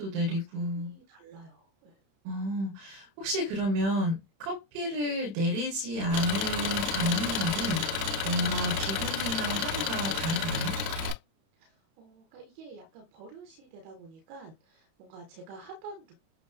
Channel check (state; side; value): late; left; 31 ms